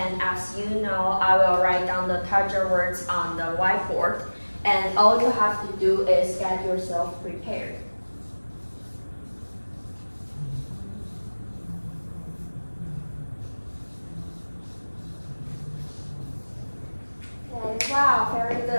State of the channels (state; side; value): inverted; both; correlation -1.00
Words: as you know, I will write down the target words on the whiteboard. And all you have to do is get yourself prepared. Okay, wow, very